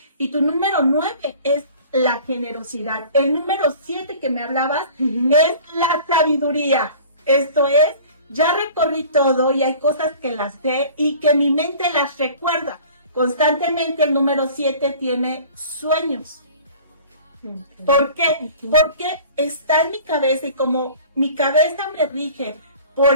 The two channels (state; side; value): inverted; both; correlation -0.45